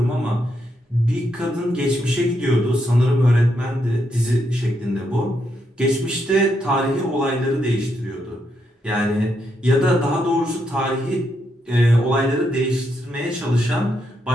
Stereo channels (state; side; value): normal; both; correlation 0.79